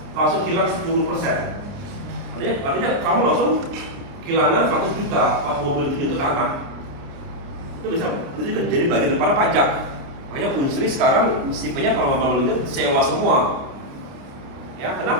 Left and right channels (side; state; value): left; late; 29 ms